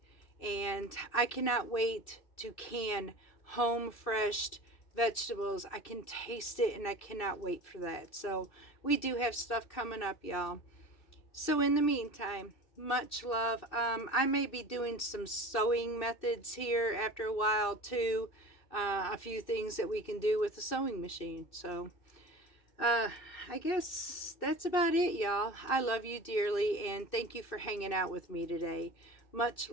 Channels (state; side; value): late; right; 2.6 ms